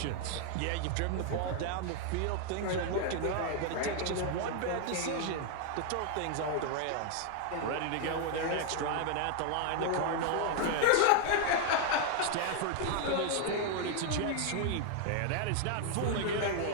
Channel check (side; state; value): both; different; correlation 0.00